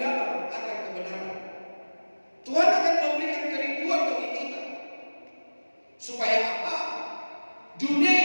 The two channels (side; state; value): both; inverted; correlation -1.00